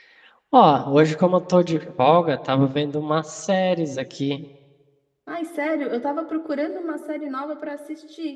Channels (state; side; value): identical; both; correlation 1.00